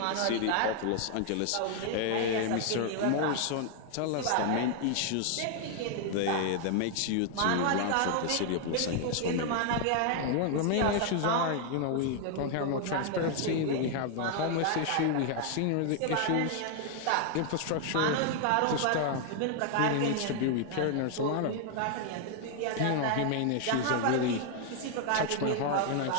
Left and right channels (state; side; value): different; both; correlation 0.00